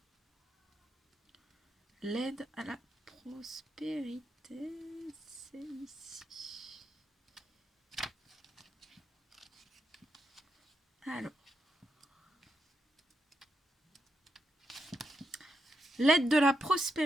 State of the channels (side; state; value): both; normal; correlation 0.83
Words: L'aide à la prospérité, c'est ici. Alors. L'aide de la